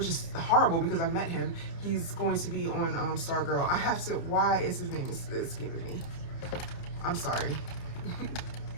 is horrible because I've met him. He's going to be on Stargirl. I have to, why is his name escaping me? I'm sorry.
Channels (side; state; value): right; late; 30 ms